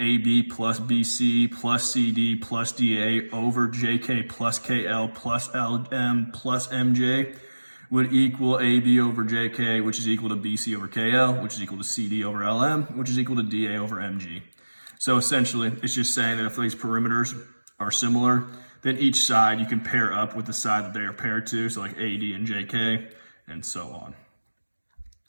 plus BC plus CD plus DA over JK plus KL plus LM plus MJ would equal AB over JK, which is equal to BC over KL, which is equal to CD over LM, which is equal to DA over MG. So essentially, it's just saying that if these perimeters are similar, then each side you can pair up with the side that they are paired to, so like AD and JK, and so on.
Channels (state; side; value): inverted; both; correlation -1.00